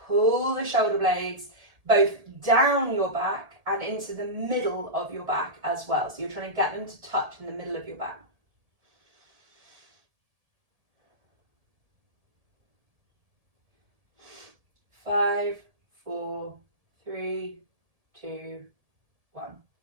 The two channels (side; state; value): left; late; 1.7 ms